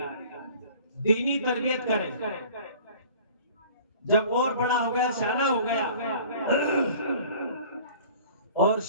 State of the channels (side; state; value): both; inverted; correlation -0.47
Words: दीनी तरबियत करें। जब और बड़ा हो गया, शाना हो गया और